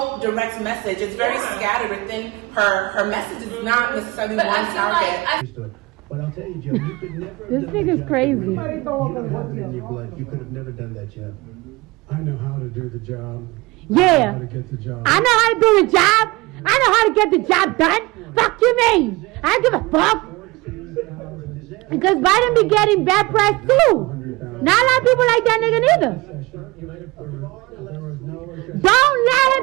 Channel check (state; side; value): quieter; left; 22.4 dB